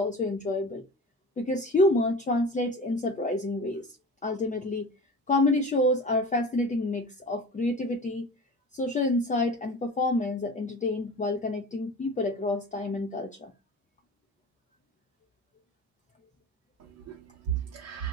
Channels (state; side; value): normal; both; correlation 0.35